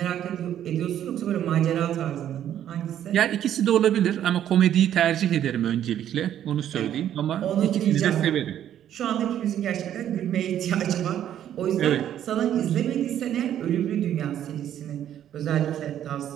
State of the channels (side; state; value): left; quieter; 10.7 dB